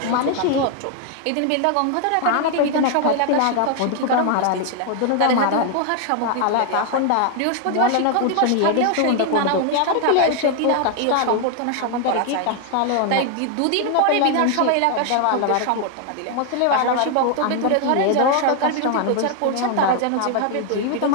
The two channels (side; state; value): both; different; correlation 0.00